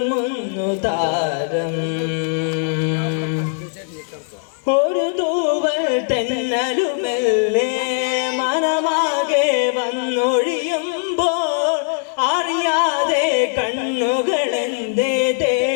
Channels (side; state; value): right; silent; digital silence